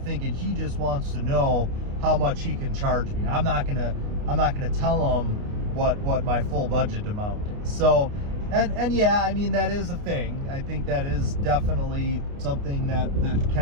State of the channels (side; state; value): left; late; 29 ms